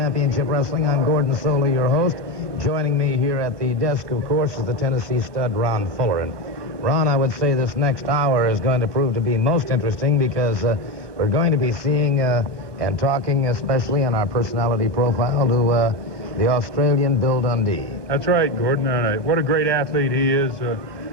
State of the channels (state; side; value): late; left; 1.2 ms